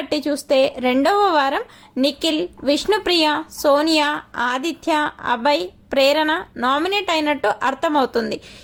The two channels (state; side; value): identical; both; correlation 1.00